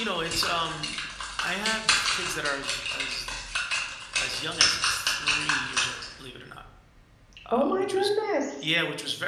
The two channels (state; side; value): identical; both; correlation 1.00